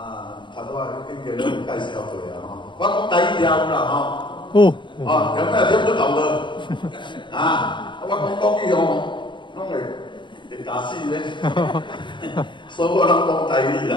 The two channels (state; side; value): late; right; 0.23 ms